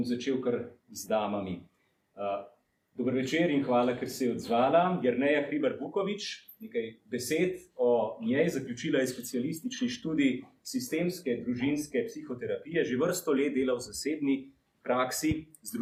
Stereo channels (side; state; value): both; identical; correlation 1.00